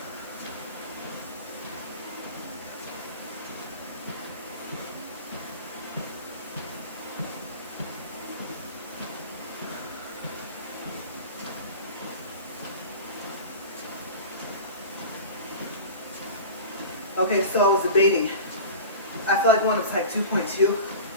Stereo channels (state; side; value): inverted; both; correlation -0.33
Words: Okay, so I was debating. I feel like one was like 2.2,